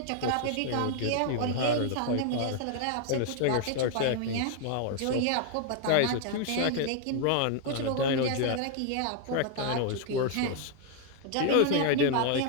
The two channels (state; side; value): different; both; correlation 0.00